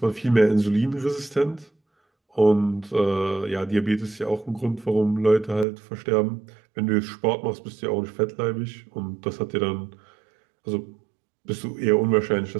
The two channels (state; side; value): drops out; left; at 5.7 s